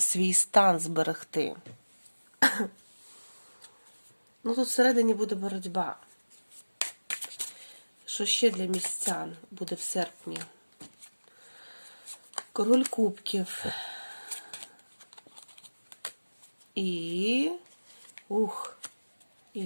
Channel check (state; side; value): inverted; both; correlation -1.00